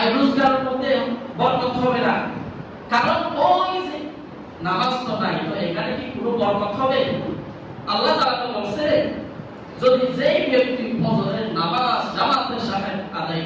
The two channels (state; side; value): identical; both; correlation 1.00